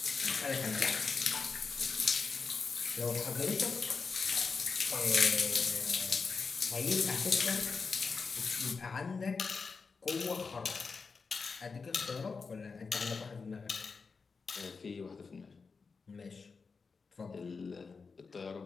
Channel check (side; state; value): right; quieter; 4.8 dB